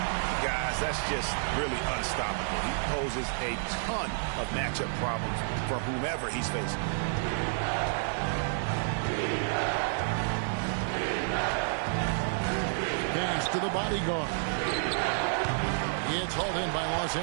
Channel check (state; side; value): silent; left; digital silence